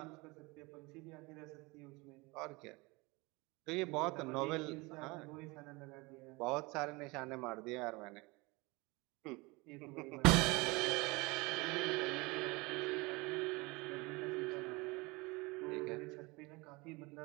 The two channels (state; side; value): quieter; left; 24.9 dB